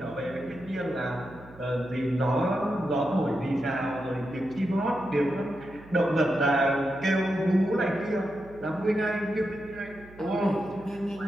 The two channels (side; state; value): right; noise; hum, 21 dB below the sound